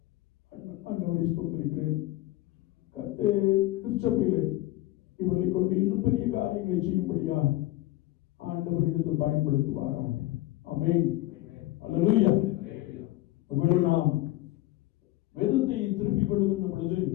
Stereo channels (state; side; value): quieter; right; 16.6 dB